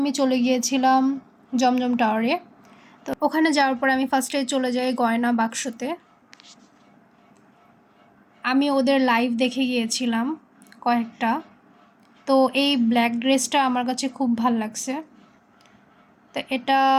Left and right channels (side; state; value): both; identical; correlation 1.00